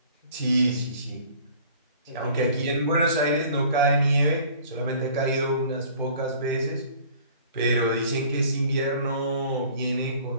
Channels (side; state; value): both; inverted; correlation -0.50